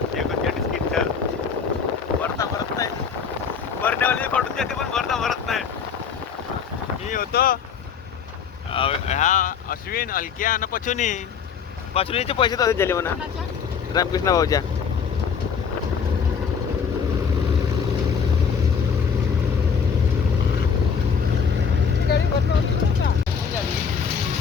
39 क्विंटल भरता भरत नाही, भरण्यावाली पडून जाते पण भरता भरत नाही। मी होतो ह्या अश्विन अलक्या आणि पचुनीचे पैसे तसेच झाले म्हणा रामकृष्ण भाऊच्या।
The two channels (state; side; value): quieter; right; 6.5 dB